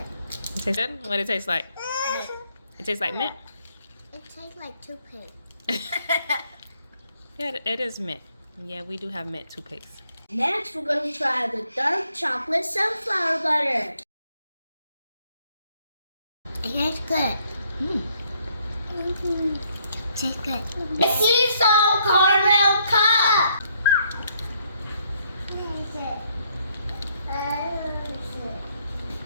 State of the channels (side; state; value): both; inverted; correlation -0.70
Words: It tastes good? What it tastes like? It tastes like mint? It tastes like toothpaste. Yeah, it is mint. Yeah, we do have mint toothpaste. Next, we're going to try the dark chocolate sunflower butter. It tastes good. Tastes good. The sea salt caramel cup.